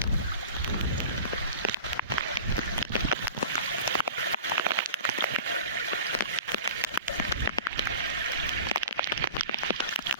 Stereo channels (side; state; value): both; inverted; correlation -0.36